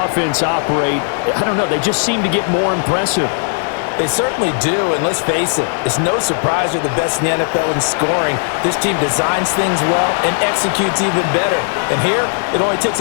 operate, I don't know, they just seem to get more impressive. They certainly do, and let's face it, it's no surprise they're the best in the NFL in scoring. This team designs things well and executes even better. And here, it only takes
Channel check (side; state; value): right; silent; digital silence